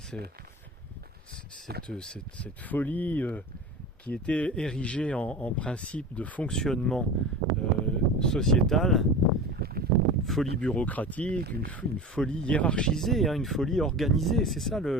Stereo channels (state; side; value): normal; both; correlation 0.32